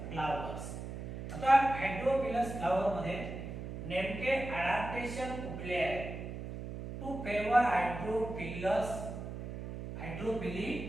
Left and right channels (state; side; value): noise; right; hum, 7 dB below the sound